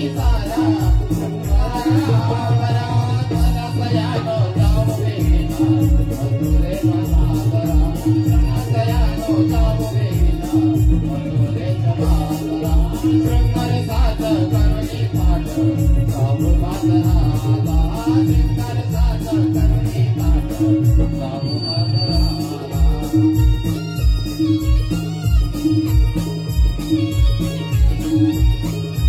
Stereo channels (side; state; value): both; identical; correlation 1.00